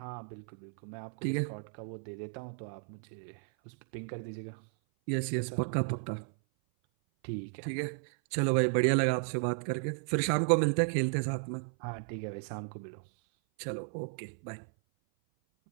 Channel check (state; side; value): silent; left; 55 dB below the other